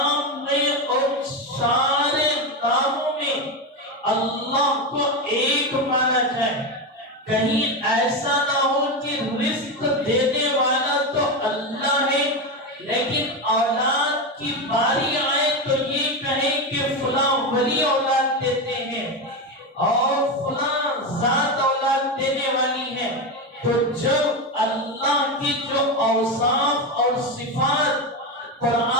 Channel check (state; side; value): normal; both; correlation 0.14